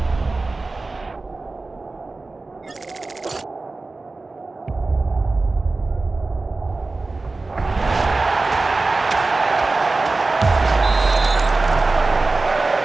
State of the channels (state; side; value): quieter; left; 3.5 dB